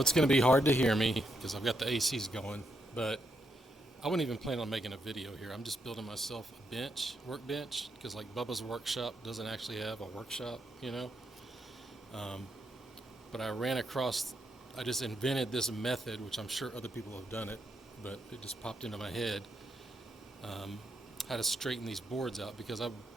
going to be hard to hear me because I've got the ACs going, but I wouldn't even plan on making a video here. I'm just building myself a workbench, because like Bubba's workshop doesn't actually have a workshop, you know. Um, but I just invented this method, which I'm sure other people have done it, but it just popped into my head, um, how to straighten these boards out, because I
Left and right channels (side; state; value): both; normal; correlation 0.79